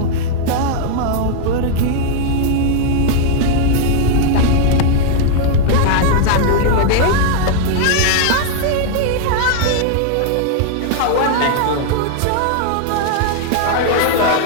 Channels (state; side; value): different; both; correlation 0.00